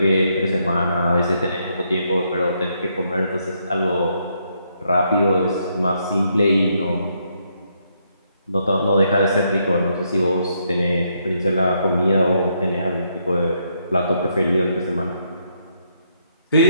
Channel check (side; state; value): both; inverted; correlation -0.75